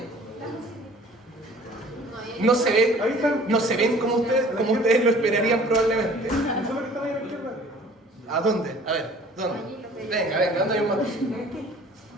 No se ven como ustedes lo esperarían probablemente. Eso es lo que están ahí a la izquierda. ¿A dónde? A ver, ¿dónde? Venga, ¿dónde hay un mastocito?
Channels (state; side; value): normal; both; correlation 0.50